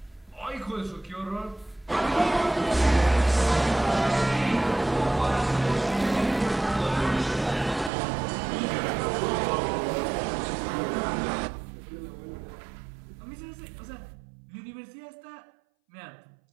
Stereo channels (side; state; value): left; drops out; at 7.9 s